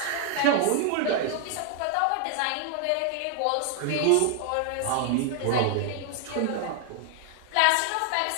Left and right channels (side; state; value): both; different; correlation 0.00